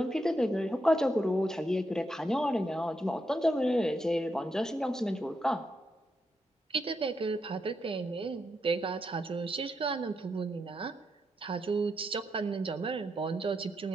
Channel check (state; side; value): normal; both; correlation 0.82